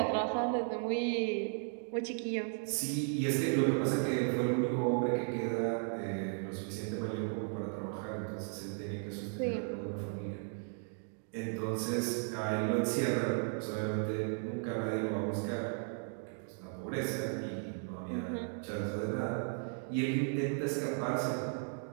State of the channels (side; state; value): left; silent; 54 dB below the other